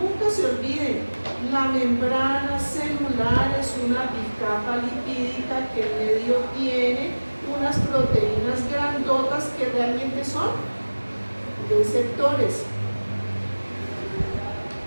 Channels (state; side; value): inverted; both; correlation -1.00